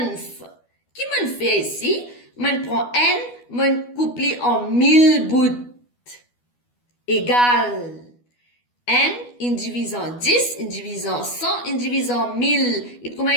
Qui me fait ici? Me prend n, me coupe en 1000 bouts. Égal. N, il divise en 10, il divise en 100, il divise en 1000. Et comment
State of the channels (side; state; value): right; late; 12 ms